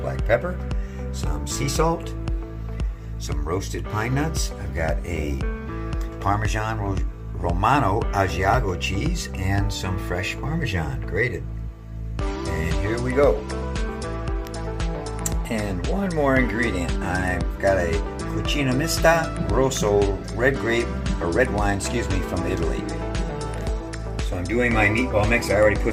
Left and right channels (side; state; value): both; identical; correlation 1.00